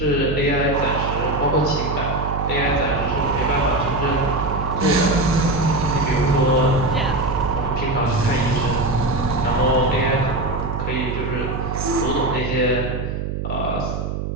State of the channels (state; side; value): noise; right; hum, 4 dB below the sound